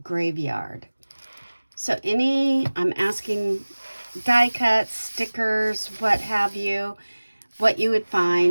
graveyard. So I'm asking die cuts, stickers, what have you, what you would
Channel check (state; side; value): inverted; both; correlation -1.00